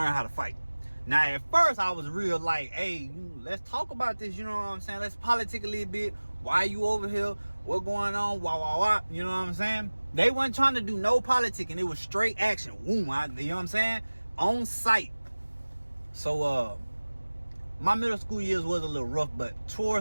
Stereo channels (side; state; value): both; inverted; correlation -1.00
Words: how to fight. Now, at first, I was real like, hey, let's talk about this, you know what I'm saying? Let's politic a little bit. Why you over here? What going on? Wah. You know what I'm saying? They wasn't trying to do no politic, and it was straight action. Boom, you know what I'm saying? On sight. So, my middle school years was a little rough, but